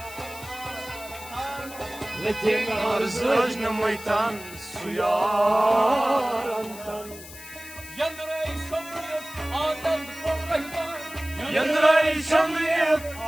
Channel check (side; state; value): left; noise; hiss, 15 dB below the sound